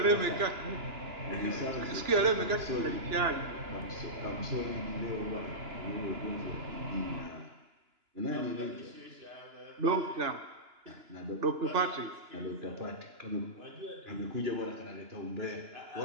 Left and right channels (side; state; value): left; late; 2.9 ms